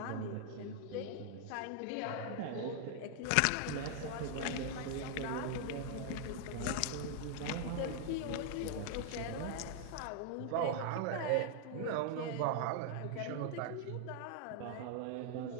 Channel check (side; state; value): both; different; correlation 0.00